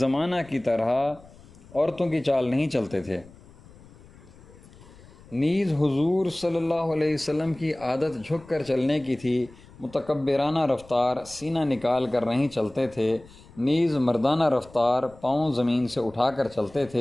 کی طرح عورتوں کی چال نہیں چلتے تھے۔ نیز حضور صلی اللہ علیہ وسلم کی عادت جھک کر چلنے کی تھی، متکبرانہ رفتار، سینہ نکال کر نہیں چلتے تھے۔ نیز مردانہ رفتار، پاؤں زمین سے اٹھا کر چلتے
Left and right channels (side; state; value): left; noise; rumble, 23 dB below the sound